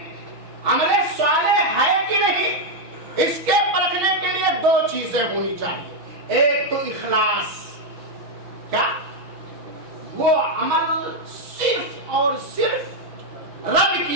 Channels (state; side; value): late; left; 6.2 ms